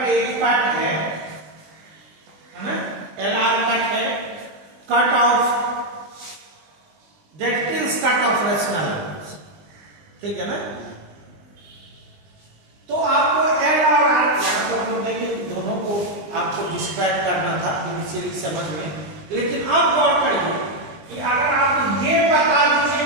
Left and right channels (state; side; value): late; left; 20 ms